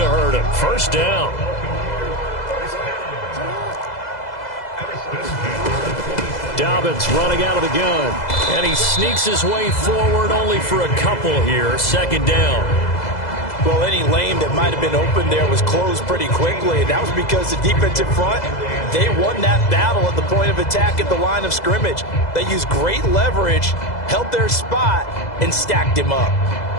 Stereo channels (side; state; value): right; late; 2.0 ms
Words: hurt him. First down. Dobbins running out of the gun. And he sneaks his way forward only for a couple here. Second down. Well, any lane that might have been open there was closed pretty quickly, and that was because the defensive front, they won that battle at the point of attack at the line of scrimmage. They used great leverage, held their spot, and stacked him up.